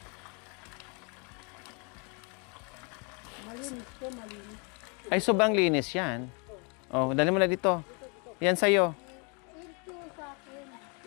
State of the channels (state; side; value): quieter; right; 34.3 dB